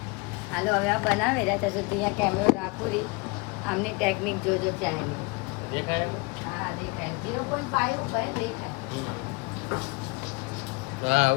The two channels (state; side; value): quieter; right; 26.4 dB